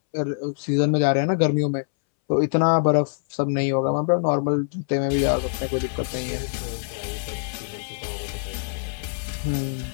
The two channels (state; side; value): silent; right; 62 dB below the other